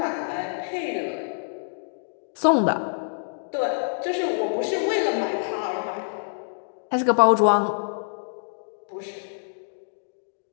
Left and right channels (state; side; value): silent; right; digital silence